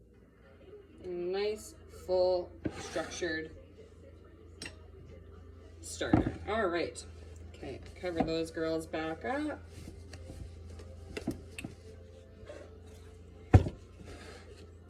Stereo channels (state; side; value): identical; both; correlation 1.00